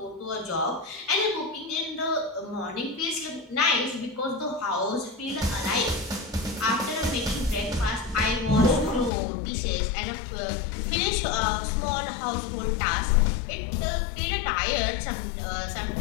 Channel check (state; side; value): drops out; right; at 9.1 s